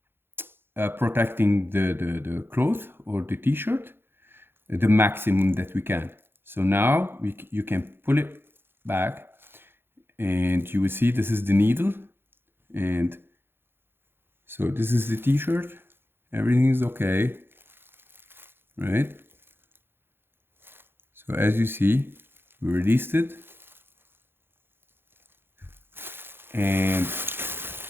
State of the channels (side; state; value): left; late; 0.10 ms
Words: protecting the cloth or the t-shirt the maximum that we can. So now you can pull it back, and you will see this is the needle, and so this is the t-shirt. Everything is okay, right? So as you see, we released it, and